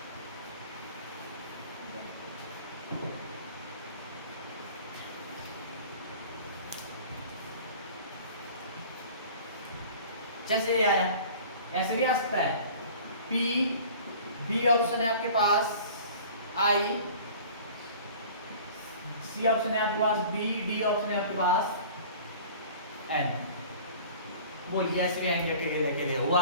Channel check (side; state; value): both; inverted; correlation -0.44